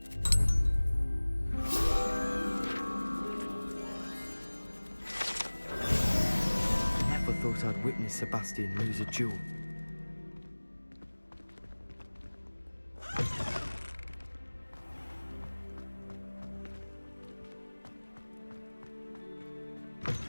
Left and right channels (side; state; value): both; inverted; correlation -1.00